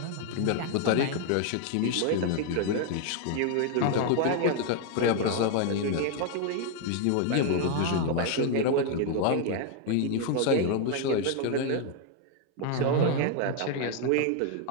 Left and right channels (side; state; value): both; different; correlation 0.00